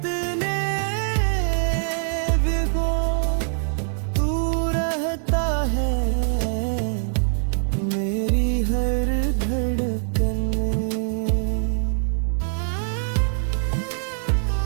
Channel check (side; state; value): left; silent; digital silence